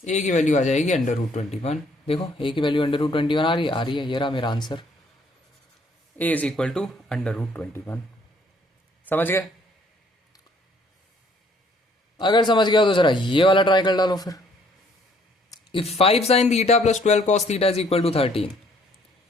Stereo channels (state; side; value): normal; both; correlation 0.63